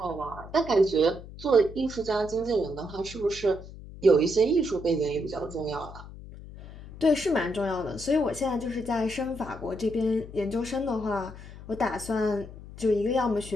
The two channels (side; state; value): left; noise; hum, 15 dB below the sound